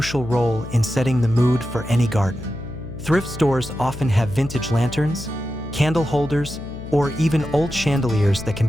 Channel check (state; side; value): noise; left; hum, 11 dB below the sound